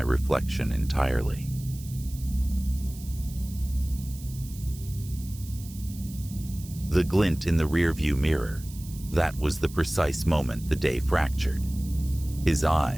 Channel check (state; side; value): noise; right; hiss, 18 dB below the sound